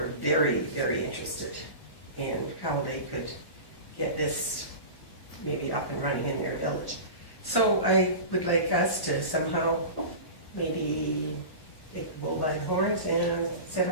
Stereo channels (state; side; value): late; right; 1.1 ms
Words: very, very interested in how they could get this maybe up and running in their village. So I would like us to somehow maybe take the bull by the horns and set